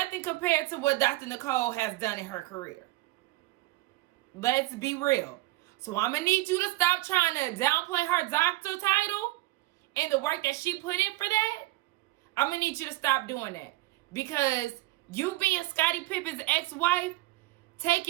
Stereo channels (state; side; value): quieter; left; 19.3 dB